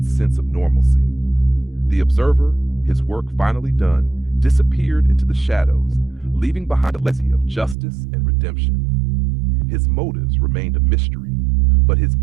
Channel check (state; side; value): drops out; left; at 7.8 s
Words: sense of normalcy. The observer, his work finally done, disappeared into the shadows, leaving behind a legacy of justice and redemption. His motives remained a mystery, but his